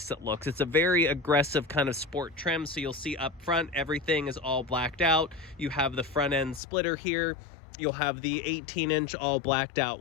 it looks. It's a very aggressive kind of sport trim, so you'll see up front everything is all blacked out. You have the front end splitter here. You'll have the 18-inch all blacked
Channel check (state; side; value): drops out; right; at 6.6 s